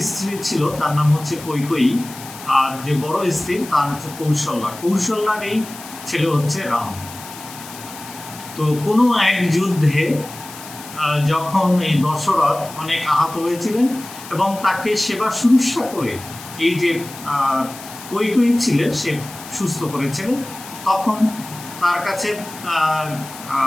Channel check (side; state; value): left; noise; hiss, 15 dB below the sound